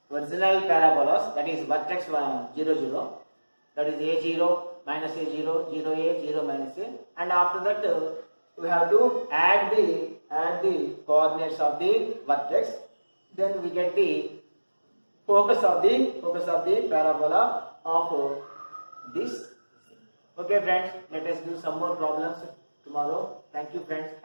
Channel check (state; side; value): inverted; both; correlation -1.00